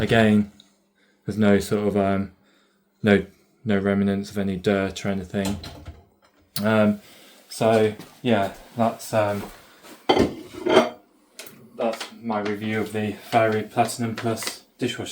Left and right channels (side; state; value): both; identical; correlation 1.00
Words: there's no sort of no remnants of any dirt or anything. So yeah, that's my review of the Fairy Platinum Plus